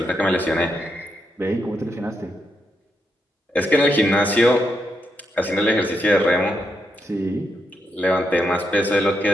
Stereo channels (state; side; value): normal; both; correlation 0.81